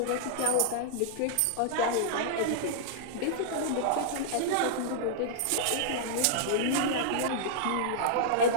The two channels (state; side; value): different; both; correlation -0.02